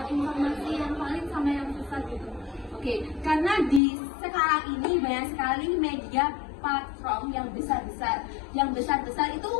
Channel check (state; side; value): drops out; right; at 3.8 s